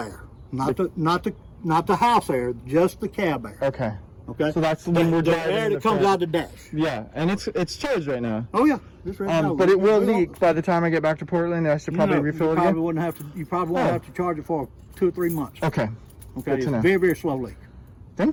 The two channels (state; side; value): identical; both; correlation 1.00